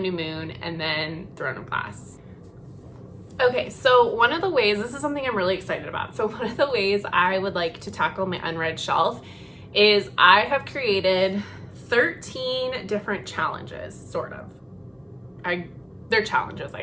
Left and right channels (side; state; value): both; identical; correlation 1.00